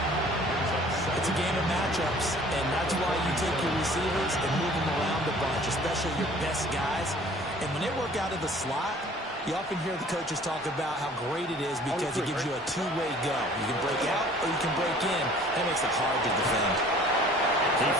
It's a game of matchups, and that's why you take your receivers and move them around a bunch, especially your best guys. And when they work out of the slot, you often hear the coaches talk about how great it is because it gives you a two-way go. You can break out or you can break in. That makes it hard to defend. He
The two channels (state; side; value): normal; both; correlation 0.51